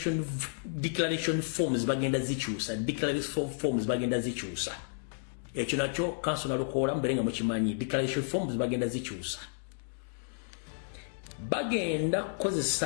forms bagenda zikyusa ekyo nakyo council nalukola mbere nga mukimanyi declaration forms bagenda zikyusa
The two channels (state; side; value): silent; right; digital silence